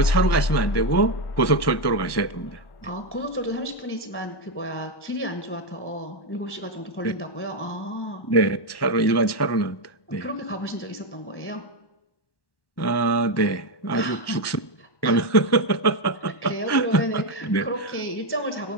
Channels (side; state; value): right; late; 1.1 ms